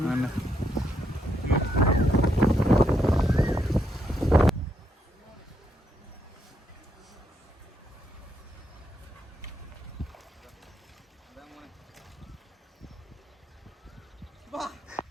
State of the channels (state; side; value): normal; both; correlation 0.77